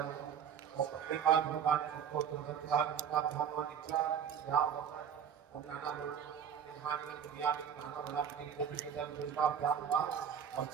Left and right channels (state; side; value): quieter; left; 8.2 dB